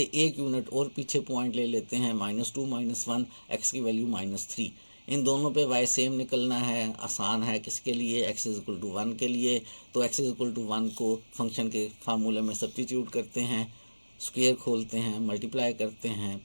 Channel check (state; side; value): inverted; both; correlation -1.00